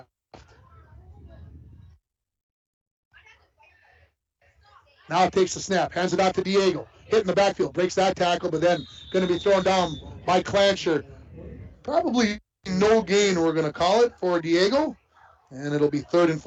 Now takes the snap, hands it out to Diego. Hit in the backfield, breaks that tackle, but then going to be thrown down by Clancher. Probably no gain, we're going to call it, for Diego. And it'll be 3rd and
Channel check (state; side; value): identical; both; correlation 1.00